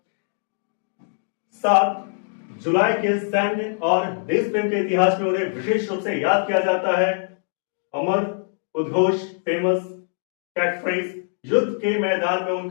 7 जुलाई के सैन्य और देश प्रेम के इतिहास में उन्हें विशेष रूप से याद किया जाता है। अमर उद्घोष, फेमस कैटफ्रेज, युद्ध के मैदान में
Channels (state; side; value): silent; right; 61 dB below the other